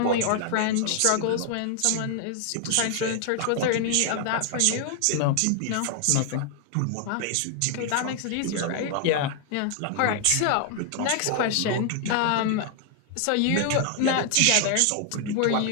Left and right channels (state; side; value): different; both; correlation 0.00